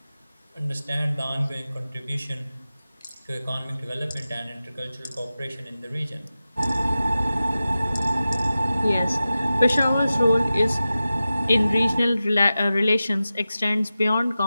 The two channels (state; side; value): inverted; both; correlation -0.94